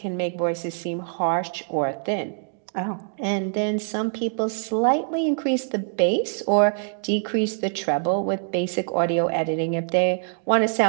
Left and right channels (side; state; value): left; silent; digital silence